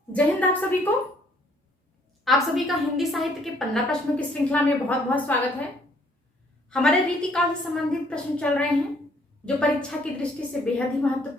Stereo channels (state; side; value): normal; both; correlation 0.63